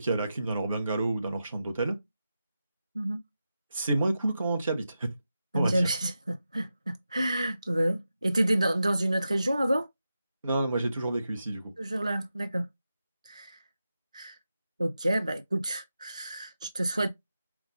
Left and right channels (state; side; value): inverted; both; correlation -0.90